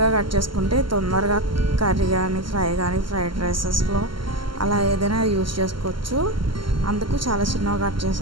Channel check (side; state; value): left; late; 0.73 ms